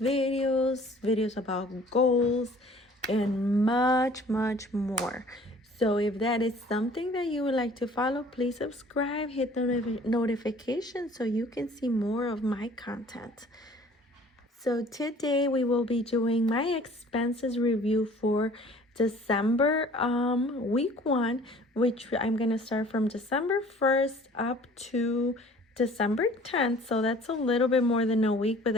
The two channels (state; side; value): normal; both; correlation 0.51